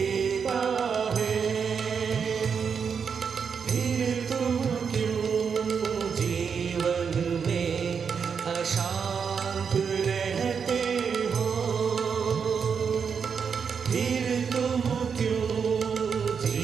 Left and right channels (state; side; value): quieter; left; 6.4 dB